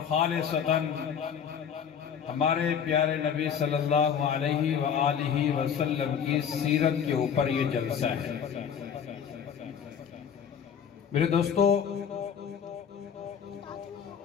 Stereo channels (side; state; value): right; quieter; 7.7 dB